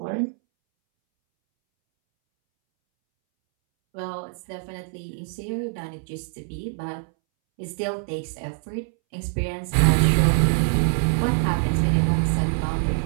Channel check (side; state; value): left; silent; 62 dB below the other